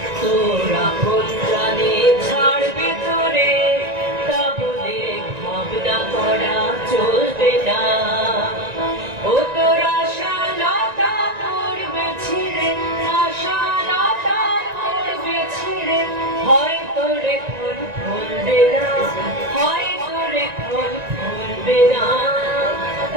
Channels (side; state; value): left; late; 1.9 ms